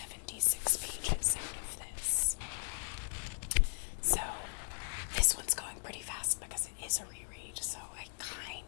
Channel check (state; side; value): silent; right; digital silence